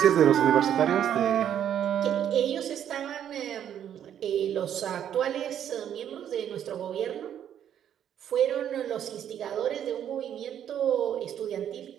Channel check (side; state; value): left; quieter; 9.8 dB